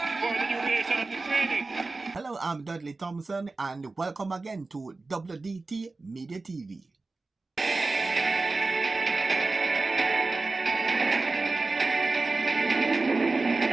for the duration of the training. Hello, I'm Dudley Thompson, and welcome again to WDT Media TV.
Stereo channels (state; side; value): quieter; left; 3.5 dB